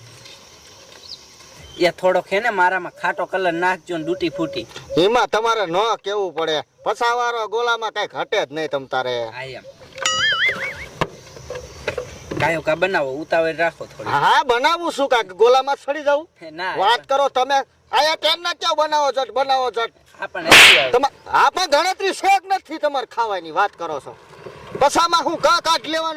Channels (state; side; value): identical; both; correlation 1.00